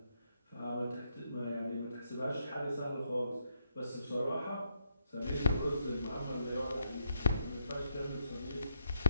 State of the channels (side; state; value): both; inverted; correlation -0.78